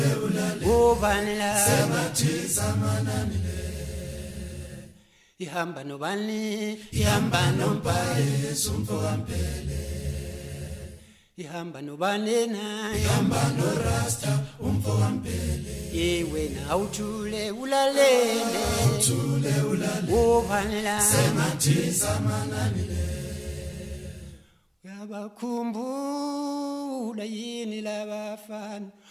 obanela mathisa mananile. Ihamba nobani ihamba nompaye sumfo kampele. Ihamba nobani na ihamba no rasta umfo kampele. Ye wena awuthule ulalele obanela mathisa mananile. Uyabakhumbula yini labafana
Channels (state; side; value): identical; both; correlation 1.00